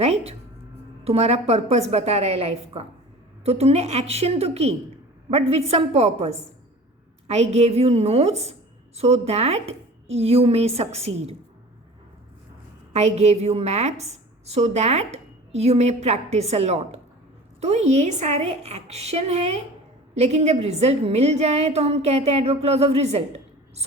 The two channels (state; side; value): normal; both; correlation 0.40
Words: तुम्हारा पर्पस बता रहा है लाइफ का. तो तुमने एक्शन तो की but with some purpose. I gave you notes so that you may succeed. I gave you maps so that you may practice a lot. तो ये सारे एक्शन हैं, लेकिन जब रिजल्ट मिल जाए तो हम कहते हैं adverb clause of result,